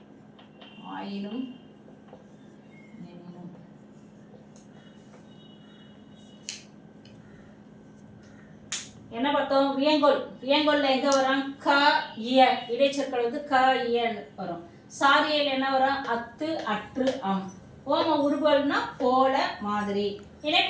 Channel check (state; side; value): identical; both; correlation 1.00